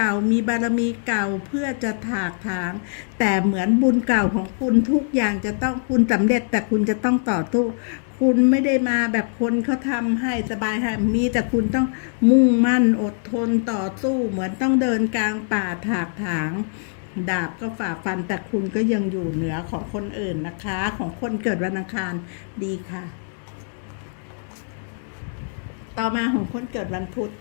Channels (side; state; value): right; silent; digital silence